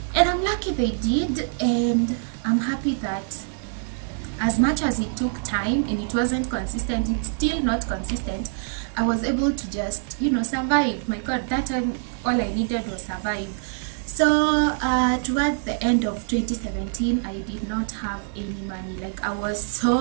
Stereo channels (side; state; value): left; silent; digital silence